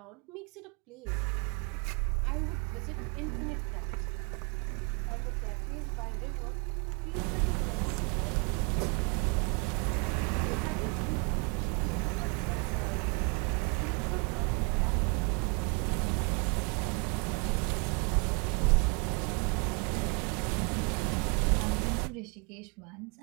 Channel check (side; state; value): left; quieter; 33.4 dB